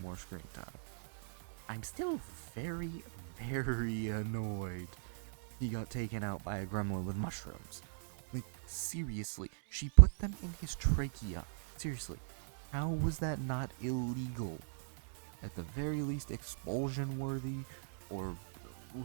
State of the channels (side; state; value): left; silent; digital silence